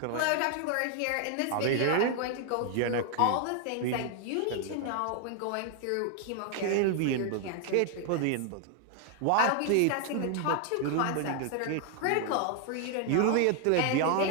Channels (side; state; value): both; different; correlation 0.00